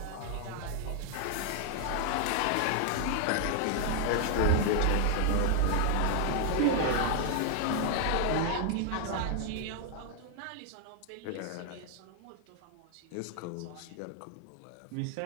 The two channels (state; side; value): different; both; correlation 0.00